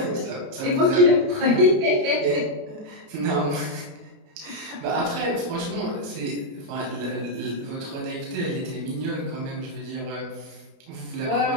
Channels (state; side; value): late; left; 28 ms